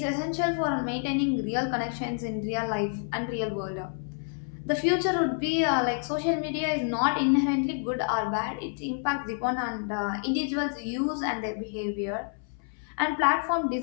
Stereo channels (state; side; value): silent; right; 59 dB below the other